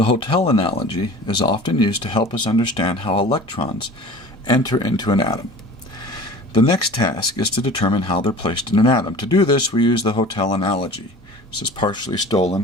hotel analogy is often used to help us understand how electrons enter into an atom. The next task is to determine how they're placed in an atom. To do this, we use the hotel analogy. This is partially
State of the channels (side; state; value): both; normal; correlation 0.41